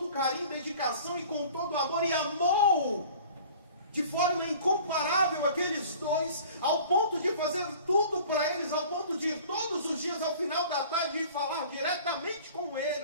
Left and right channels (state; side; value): inverted; both; correlation -0.46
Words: carinho, dedicação e com todo amor, e amou de forma incomparável aqueles dois, ao ponto de fazer tudo para eles, ao ponto de ir todos os dias ao final da tarde e falar diretamente com